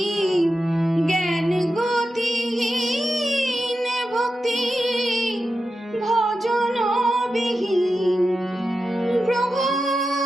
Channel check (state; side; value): normal; both; correlation 0.90